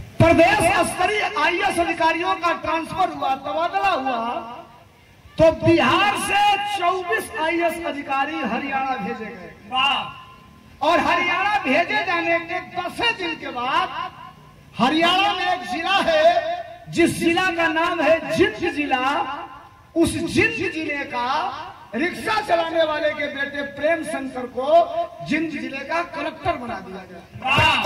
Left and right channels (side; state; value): both; identical; correlation 1.00